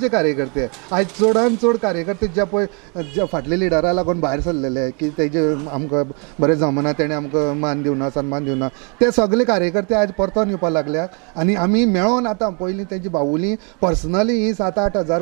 कार्यकर्ते आयज चडान चड कार्यकर्ते जे पळय जे फाटले लिडरा लागून भायर सरलेले की तेजे आमकां बरें जमना, तेणें आमकां मान दिवना, सन्मान दिवना, ते सगळे कार्यकर्ते आयज परतून येवपाक लागल्यात। आनी आमी मेळोन आतां पयलीं तेजी भाऊली पर्सनली ही 7-8 हजार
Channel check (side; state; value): left; quieter; 35.6 dB